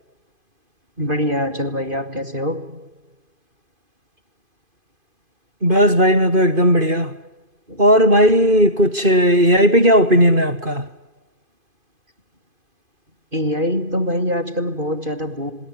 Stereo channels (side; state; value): left; late; 2.5 ms